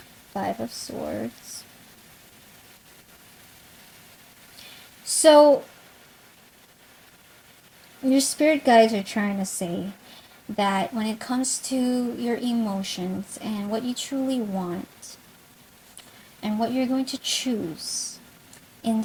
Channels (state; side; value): identical; both; correlation 1.00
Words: Five of Swords. So your spirit guides are trying to say that when it comes to your emotions and what you truly want and what you're going to choose in